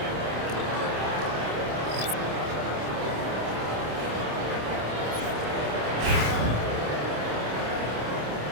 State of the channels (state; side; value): late; left; 27 ms